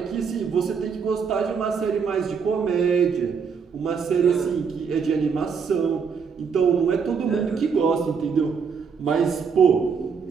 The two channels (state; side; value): quieter; left; 6.1 dB